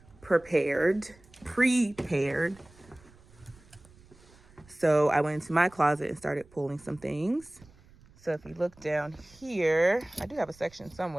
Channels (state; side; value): noise; right; rumble, 26 dB below the sound